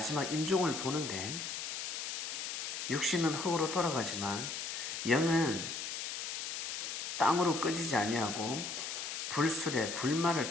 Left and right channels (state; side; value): noise; left; hiss, 4 dB below the sound